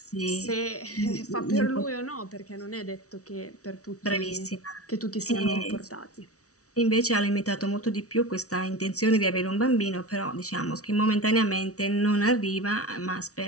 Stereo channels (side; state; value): right; late; 0.66 ms